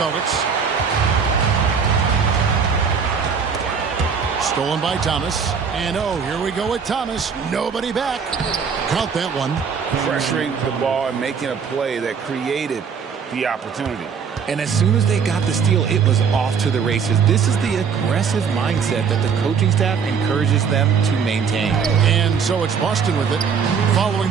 Stolen by Thomas. And here we go with Thomas. Nobody back. Count that one. Pressuring the ball and making a play that created the opportunity. And as soon as they got the steal, it was off to the races. This is the aggressive mindset that the coaching staff encourages them to maintain. And so it's Boston with it, following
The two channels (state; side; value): quieter; left; 6.4 dB